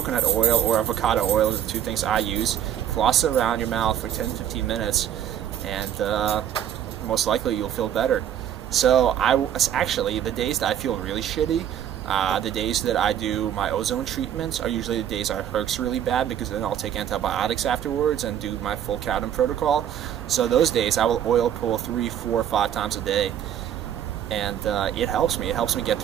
oil or avocado oil are the two things I use. Floss it around your mouth for 10-15 minutes, and most likely you'll feel better. So actually, the days that I feel really shitty, the days that I do my ozone treatments are usually the days I hurts really bad, because then I'll take antibiotics afterwards and do my full codeine protocol. So those days I will oil pull 3, 4, 5 times a day. And it helps me. It helps me get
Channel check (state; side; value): quieter; left; 10.1 dB